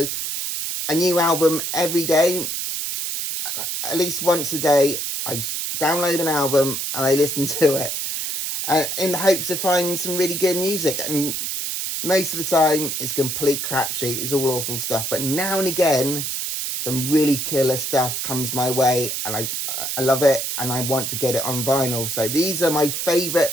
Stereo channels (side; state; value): right; noise; hiss, 3 dB below the sound